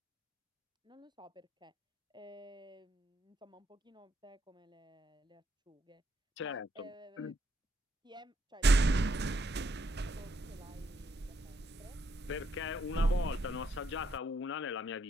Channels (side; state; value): both; normal; correlation 0.75